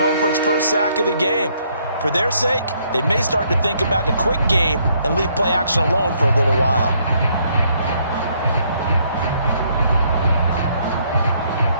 for its first sack of the game. For their sake, they may start to think about the quick game and leave play action alone for a little while.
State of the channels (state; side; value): inverted; both; correlation -0.69